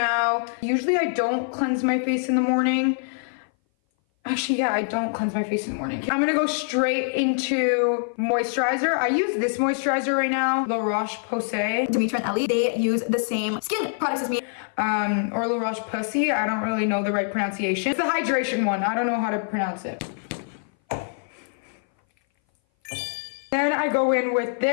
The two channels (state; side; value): silent; right; 58 dB below the other